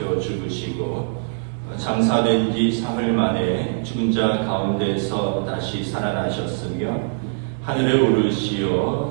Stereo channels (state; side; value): silent; left; 64 dB below the other